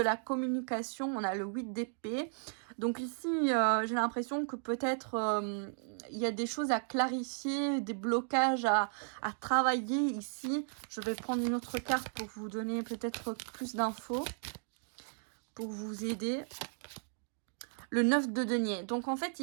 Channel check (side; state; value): left; silent; digital silence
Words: communication, on a le 8 d'épée. Donc ici, j'ai l'impression que peut-être il y a des choses à clarifier, des blocages à travailler ici. Je vais prendre une autre carte pour vous donner peut-être plus d'infos, pour vous aider. Le 9 de denier. Donc en fait